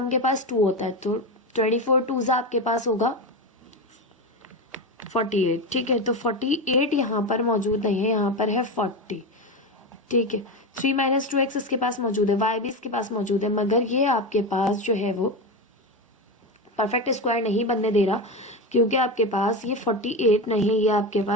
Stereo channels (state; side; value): normal; both; correlation 0.17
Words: के पास 2 होता है, तो 24 2 आपके पास होगा 48। ठीक है, तो 48 यहाँ पर मौजूद नहीं है, यहाँ पर है 40। ठीक है, 3 माइनस 2x इसके पास मौजूद है, y भी इसके पास मौजूद है, मगर ये आपके पास जो है वो परफेक्ट स्क्वायर नहीं बनने दे रहा, क्योंकि आपके पास ये 48 नहीं, ये आपके